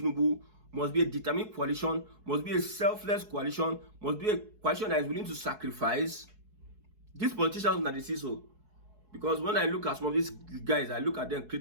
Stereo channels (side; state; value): left; late; 4.7 ms